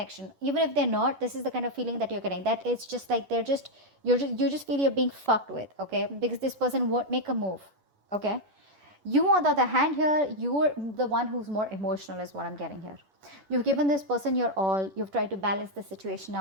Even if they're not, this is the kind of feeling that you're getting, that it's just like you just feel you're being fucked with. Okay, because this person won't make a move. Okay, you on the other hand here, you're the one who's more emotional is what I'm getting here. You've given this person your all, you've tried to balance the situation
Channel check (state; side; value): late; left; 10 ms